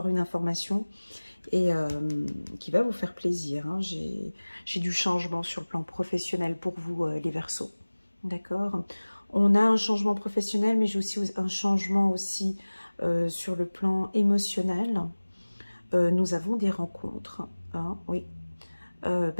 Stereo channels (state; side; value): inverted; both; correlation -1.00